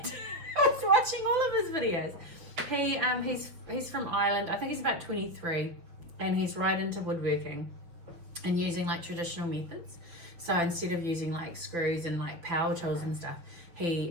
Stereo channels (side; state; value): left; late; 5.9 ms